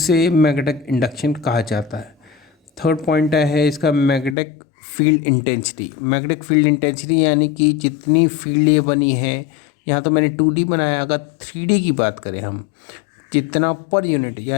मैग्नेटिक इंडक्शन कहा जाता है। थर्ड पॉइंट है इसका magnetic field intensity. Magnetic field intensity यानी कि जितनी फील्ड ये बनी है, यहाँ तो मैंने 2D बनाया, अगर 3D की बात करें हम, जितना पर यूनिट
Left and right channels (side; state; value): right; drops out; at 4.4 s